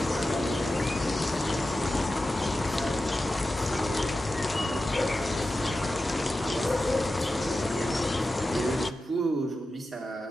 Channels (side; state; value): both; normal; correlation 0.92